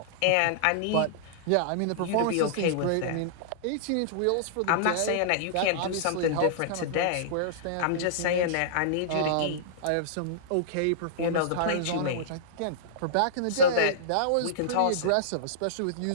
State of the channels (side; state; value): both; different; correlation -0.02